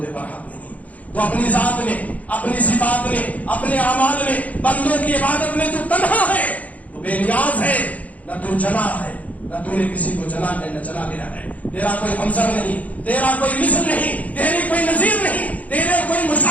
برحق نہیں، تو اپنی ذات میں، اپنی صفات میں، اپنے اعمال میں، بندوں کی عبادت میں تو تنہا ہے، تو بے نیاز ہے، نہ تو جنا ہے، نہ تو نے کسی کو جنا ہے، نہ چلا گیا ہے. تیرا کوئی ہمسر نہیں، تیرا کوئی مثل نہیں، تیری کوئی نظیر نہیں، تیرے کوئی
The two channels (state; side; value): late; right; 0.072 ms